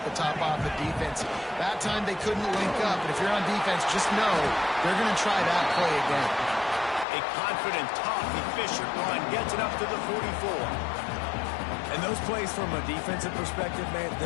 the top off the defense. That time they couldn't link up, and if you're on defense, just know they're going to try that play again. A confident, tough, efficient run gets it up to the 44. And those plays from a defensive perspective, man,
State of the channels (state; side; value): drops out; right; at 7.1 s